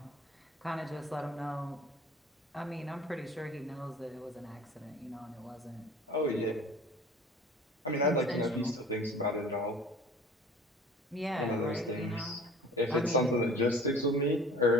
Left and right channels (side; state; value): both; normal; correlation 0.45